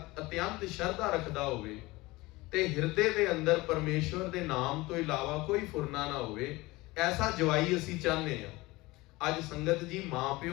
श्रद्धा रखदा होवे ते हिरदे दे अंदर परमेश्वर दे नाम तो इलावा कोई फुरना ना होवे। ऐसा जवाई असी चाहते हैं। अज संगत जी मां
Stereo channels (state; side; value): quieter; right; 21.1 dB